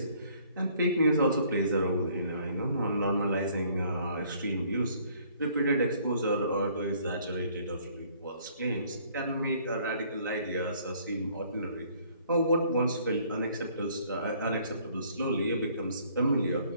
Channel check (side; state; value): both; inverted; correlation -0.61